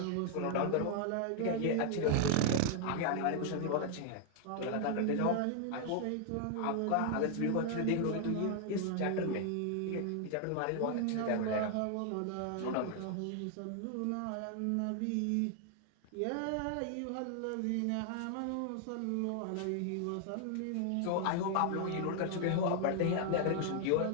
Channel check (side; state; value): both; different; correlation 0.00